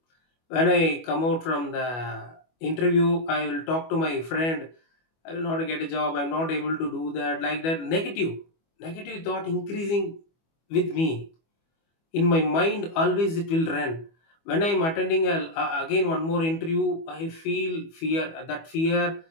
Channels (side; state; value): right; late; 25 ms